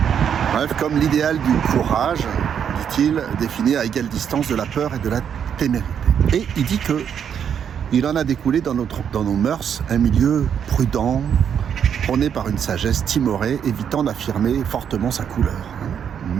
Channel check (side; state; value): left; quieter; 8.2 dB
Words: Bref, comme l'idéal du courage, dit-il, défini à égale distance de la peur et de la témérité. Et il dit qu'il en a découlé dans nos mœurs un milieu prudent, prôné par une sagesse timorée, évitant d'affirmer fortement sa couleur. Une